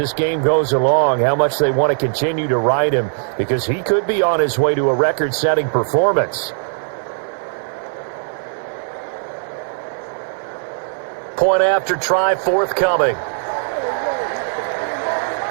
game goes along, how much they want to continue to ride him, because he could be on his way to a record-setting performance. Point after try forthcoming.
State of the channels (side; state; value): left; silent; 57 dB below the other